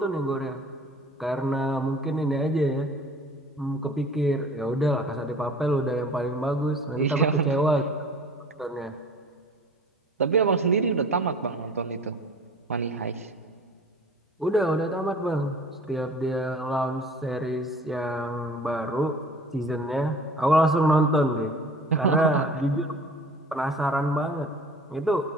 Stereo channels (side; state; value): both; normal; correlation 0.45